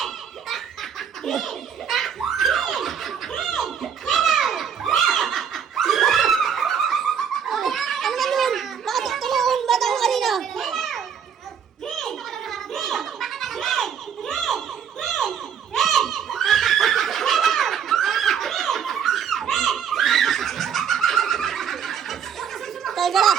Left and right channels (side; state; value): left; quieter; 7.7 dB